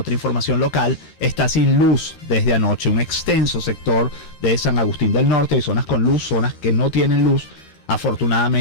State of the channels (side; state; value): right; late; 13 ms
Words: información local, está sin luz desde anoche. Un extenso sector de San Agustín del Norte, hay zonas con luz, zonas que no tienen luz.